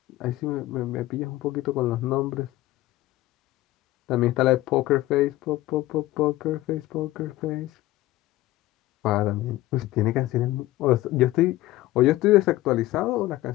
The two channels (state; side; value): quieter; right; 16.9 dB